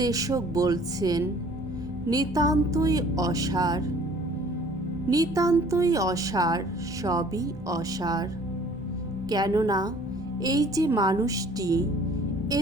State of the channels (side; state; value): both; normal; correlation 0.53